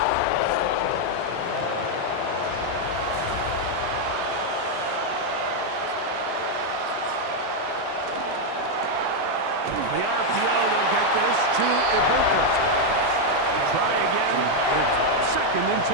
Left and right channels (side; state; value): both; different; correlation 0.01